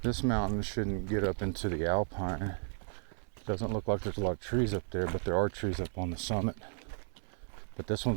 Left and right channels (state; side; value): silent; left; 55 dB below the other